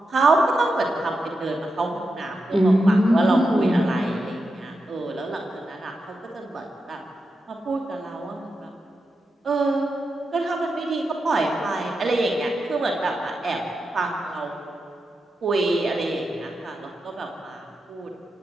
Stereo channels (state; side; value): normal; both; correlation 0.88